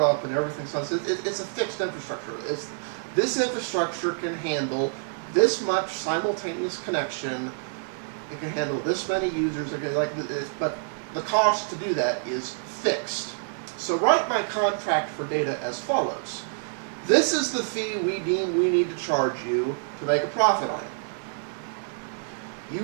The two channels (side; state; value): left; silent; digital silence